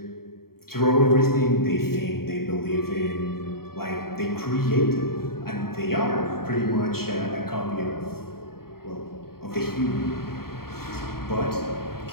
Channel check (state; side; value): late; right; 0.93 ms